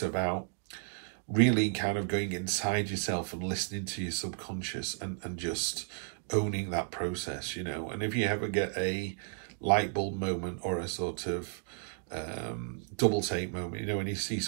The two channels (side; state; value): left; silent; digital silence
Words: about really kind of going inside yourself and listening to your subconscious and just owning that process, you know. And if you ever get a light bulb moment or a sort of double take moment, you know, when you see